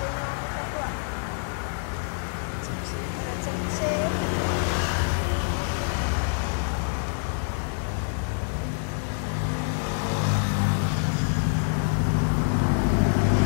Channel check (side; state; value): right; silent; 61 dB below the other